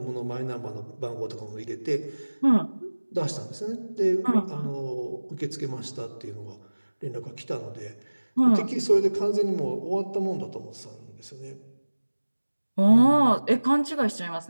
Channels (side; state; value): both; inverted; correlation -1.00